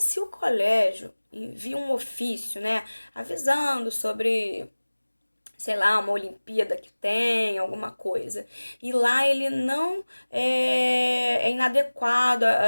o colégio envia um ofício, né? Avisando sobre, sei lá, uma Olimpíada que tem, alguma coisa. E lá ele não é inadequado,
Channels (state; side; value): inverted; both; correlation -1.00